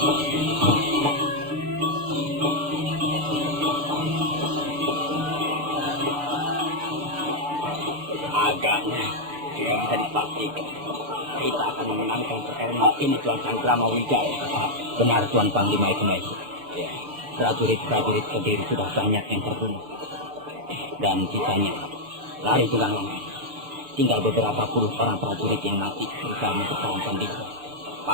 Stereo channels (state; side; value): late; left; 6.8 ms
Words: Agaknya sudah bisa dipastikan kita akan memenangkan pertarungan ini, Tuan Sanggrama Wijaya. Benar, Tuan Panglima Ikumesu. Ya, prajurit-prajurit Kediri sudah banyak yang terbunuh. Dan sisanya lari tunggang langgang. Tinggal beberapa puluh orang prajurit yang masih berusaha mempertahankan diri.